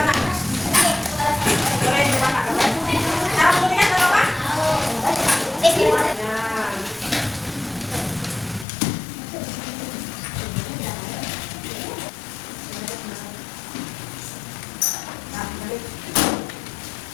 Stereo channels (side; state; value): right; drops out; at 8.7 s